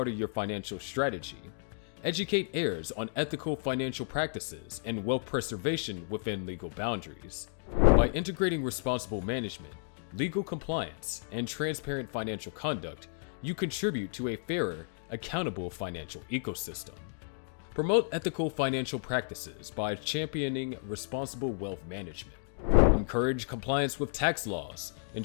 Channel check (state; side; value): silent; right; digital silence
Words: of your financial strategy. Educate heirs on ethical financial practices and wealth preservation within legal boundaries. By integrating responsible management, legal compliance, and transparent financial conduct, you contribute to a fairer, accountable financial ecosystem. Promote ethical financial practices by championing responsible wealth management. Encourage compliance with tax laws,